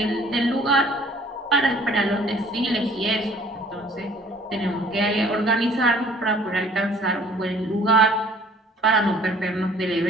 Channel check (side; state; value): both; normal; correlation 0.54